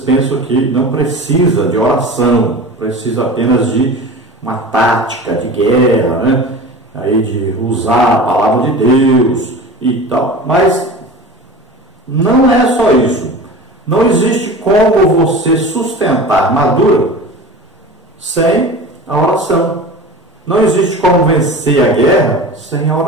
pensam que não precisa de oração, precisa apenas de uma tática de guerra, aí de usar a palavra de Deus e tal, mas não é só isso. Não existe como você sustentar a armadura sem a oração. Não existe como vencer a guerra sem a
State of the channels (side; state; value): both; normal; correlation 0.34